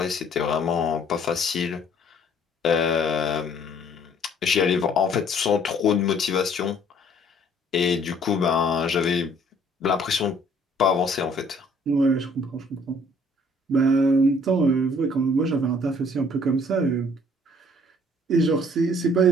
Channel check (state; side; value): normal; both; correlation 0.58